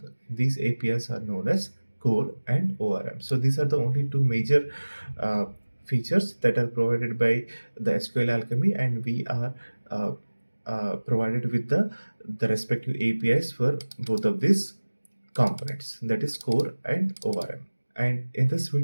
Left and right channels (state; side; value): inverted; both; correlation -1.00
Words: These APIs are known as core and ORM. So these are the only two major uh, features that are provided by the SQLAlchemy, and we are uh, provided with the respective APIs for both of these components, that is core and ORM. And in this